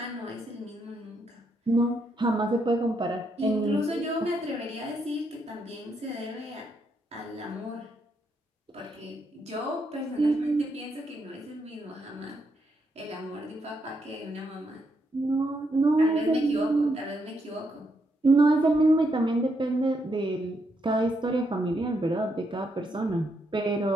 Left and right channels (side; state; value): both; normal; correlation 0.78